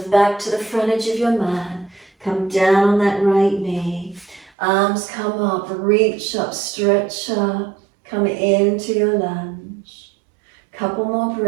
back to the front edge of your mat. Come down on that right knee. Arms come up, reach up, stretch up. Come into your lunge. Couple more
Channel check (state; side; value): drops out; left; at 4.5 s